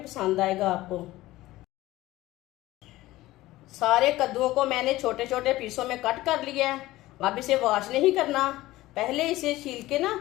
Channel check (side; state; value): right; quieter; 17.2 dB